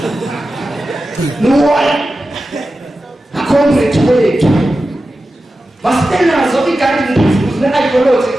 no acomrade wethu masitenazo i-guiding principles ne-ideology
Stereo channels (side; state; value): both; normal; correlation 0.93